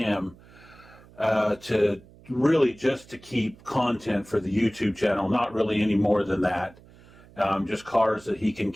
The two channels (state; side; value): noise; right; hum, 24 dB below the sound